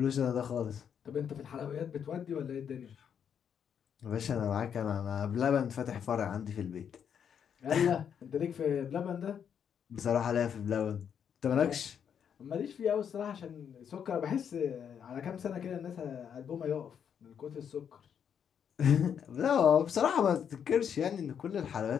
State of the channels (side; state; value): right; quieter; 8.0 dB